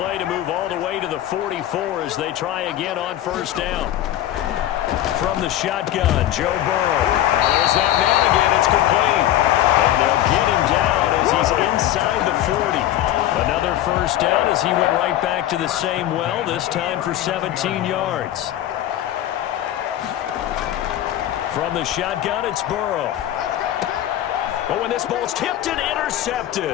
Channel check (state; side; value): quieter; right; 12.8 dB